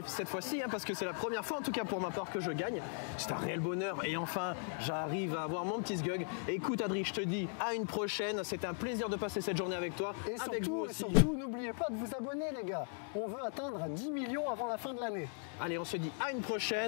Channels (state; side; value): silent; right; 52 dB below the other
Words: cette fois-ci, parce que c'est la première fois, en tout cas pour ma part, que je gagne. C'est un réel bonheur. Et enfin, j'arrive à avoir mon petit sgug. Écoute Adri, je te dis à une prochaine. C'était un plaisir de passer cette journée avec toi. Et surtout, n'oubliez pas de vous abonner les gars. On veut atteindre 10 millions avant la fin de l'année. Allez, on se dit à une